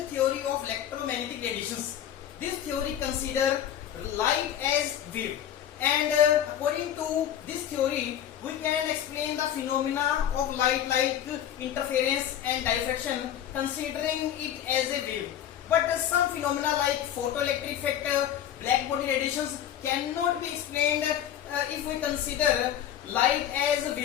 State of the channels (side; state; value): right; quieter; 10.5 dB